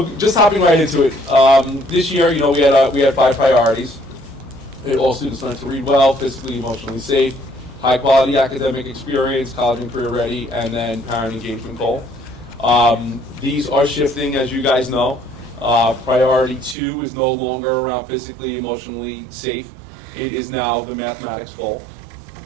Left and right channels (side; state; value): left; drops out; at 16.8 s